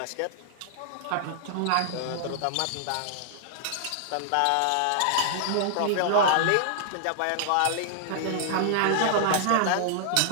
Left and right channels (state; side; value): different; both; correlation -0.01